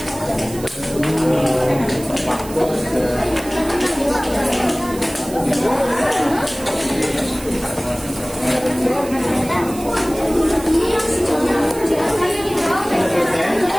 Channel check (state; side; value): noise; right; hiss, 15 dB below the sound